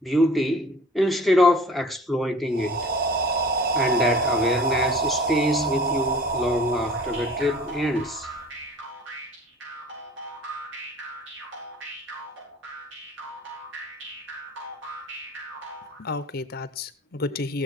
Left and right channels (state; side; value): normal; both; correlation 0.45